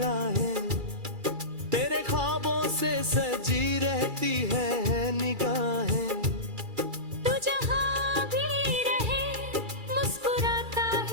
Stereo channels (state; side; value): late; left; 2.3 ms